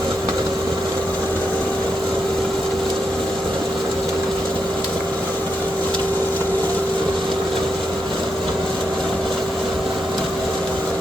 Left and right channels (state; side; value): normal; both; correlation 0.83